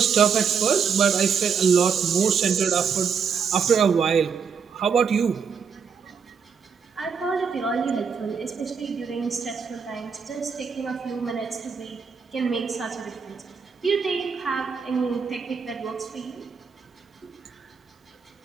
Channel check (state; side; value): quieter; left; 6.2 dB